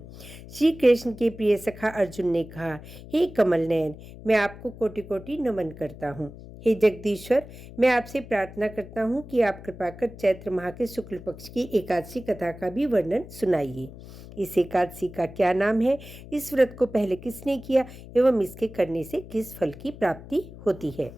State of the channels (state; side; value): noise; left; hum, 16 dB below the sound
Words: श्री कृष्ण के प्रिय सखा अर्जुन ने कहा, हे कमल नयन, मैं आपको कोटि कोटि नमन करता हूँ। हे जगदीश्वर, मैं आपसे प्रार्थना करता हूँ कि आप कृपा कर चैत्र माह के शुक्ल पक्ष की एकादशी कथा का भी वर्णन सुनाइए। इस एकादशी का क्या नाम है, इस व्रत को पहले किसने किया एवं इसके करने से किस फल की प्राप्ति होती है।